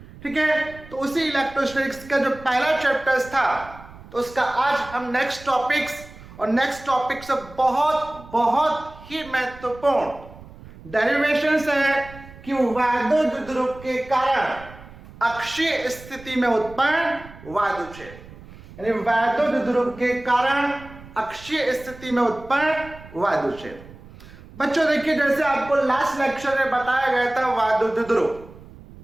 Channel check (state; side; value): noise; right; rumble, 19 dB below the sound